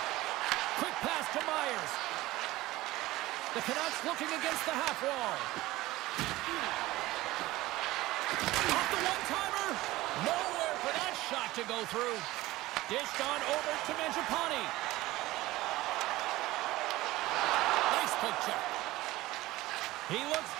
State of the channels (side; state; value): left; quieter; 18.1 dB